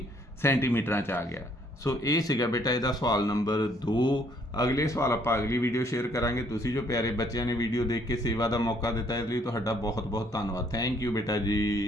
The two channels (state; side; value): normal; both; correlation 0.65